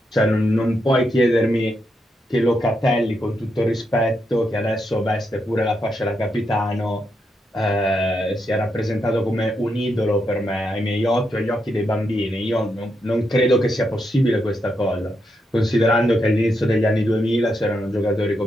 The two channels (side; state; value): both; normal; correlation 0.82